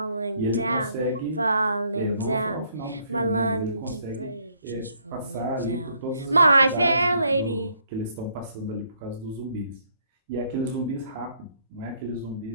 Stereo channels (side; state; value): both; inverted; correlation -0.68